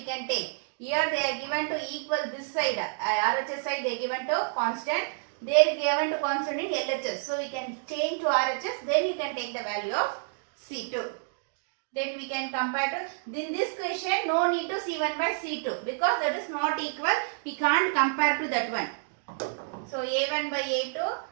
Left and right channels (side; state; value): left; silent; digital silence